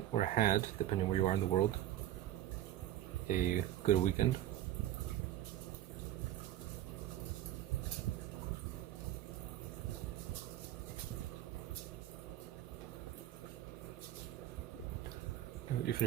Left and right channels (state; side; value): quieter; left; 12.9 dB